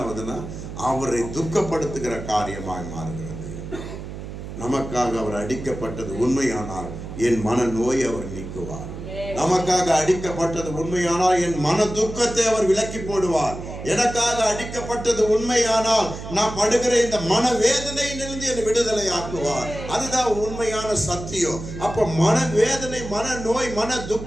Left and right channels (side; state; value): right; noise; hum, 10 dB below the sound